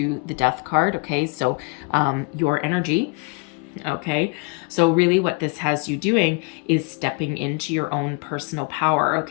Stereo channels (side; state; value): right; quieter; 30.3 dB